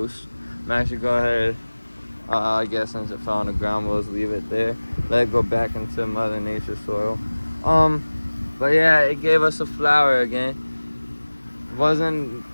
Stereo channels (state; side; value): inverted; both; correlation -1.00